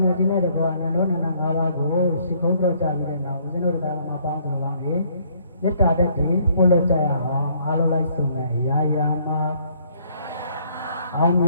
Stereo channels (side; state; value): both; inverted; correlation -0.64